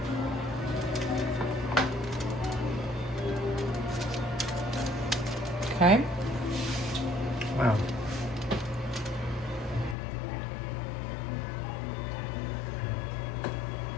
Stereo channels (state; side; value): drops out; right; at 10.0 s